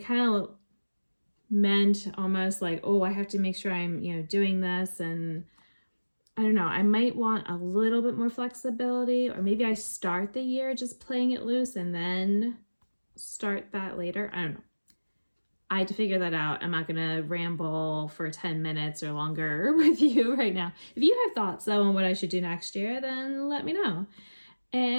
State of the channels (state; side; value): inverted; both; correlation -1.00